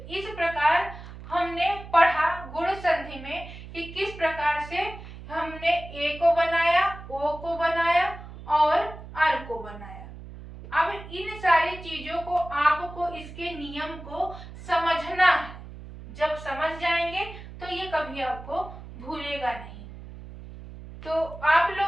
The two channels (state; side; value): noise; right; hum, 14 dB below the sound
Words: इस प्रकार हमने पढ़ा गुण संधि में कि किस प्रकार से हमने ए को बनाया, ओ को बनाया और अर को बनाया। अब इन सारी चीजों को आपको इसके नियम को समझना है। जब समझ जाएंगे तो ये कभी आपको भूलेगा नहीं। तो आप